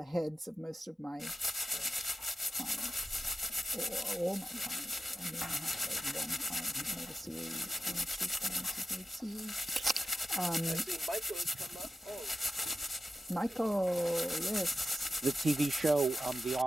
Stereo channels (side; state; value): both; normal; correlation 0.92